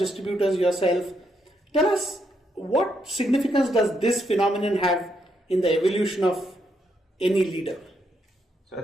yourself. Tell us, what significance does this phenomenon have in the evolution of any leader? So I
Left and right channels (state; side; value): normal; both; correlation 0.78